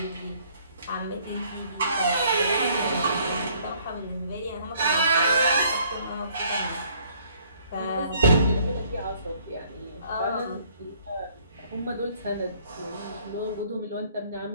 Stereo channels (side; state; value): both; inverted; correlation -0.61